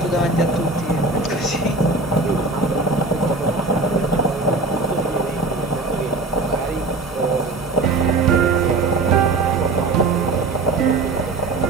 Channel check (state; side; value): quieter; left; 3.4 dB